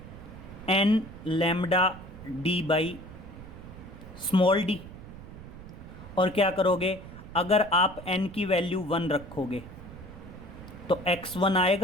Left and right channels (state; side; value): noise; right; rumble, 15 dB below the sound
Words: n λd/d। और क्या करोगे, अगर आप n की वैल्यू 1 रखोगे तो x1